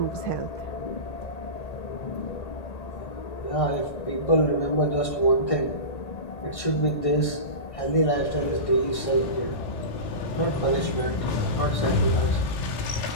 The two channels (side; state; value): right; late; 1.6 ms